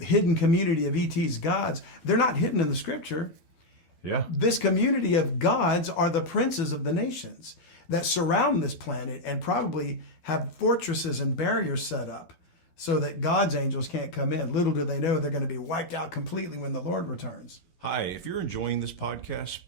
community of ET's gods, they're not hidden in the scripture. Yeah. This community of gods are the princes of the nations that surround this planet and probably have fortresses and barriers set up so that God's angels can't come in. Little do they know they're going to be wiped out completely when the Lord returns. Hi, if you're enjoying this podcast,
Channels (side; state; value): right; late; 12 ms